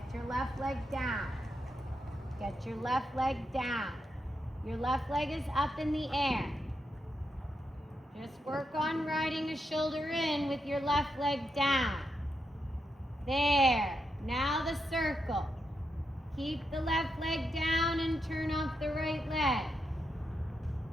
your left leg down. Get your left leg down. Your left leg is up in the air. Just work on riding a shoulder in with your left leg down. There. Now the circle. Keep the left leg down and turn off the right leg.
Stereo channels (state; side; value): normal; both; correlation 0.84